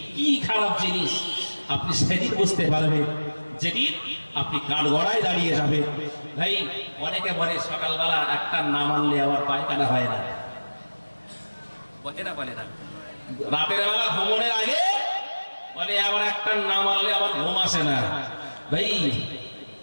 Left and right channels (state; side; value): inverted; both; correlation -1.00